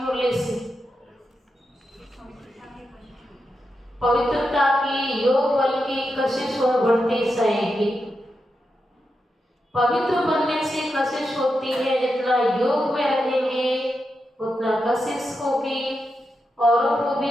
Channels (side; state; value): both; normal; correlation 0.87